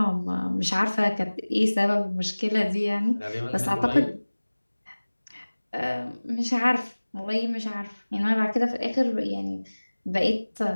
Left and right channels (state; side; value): inverted; both; correlation -1.00